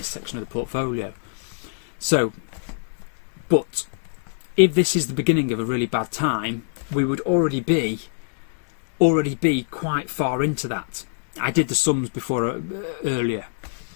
section of the portfolio. So, but if this is the beginning of a really bad time, we would already be quite far into that. I did the sums before earlier.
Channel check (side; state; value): right; silent; digital silence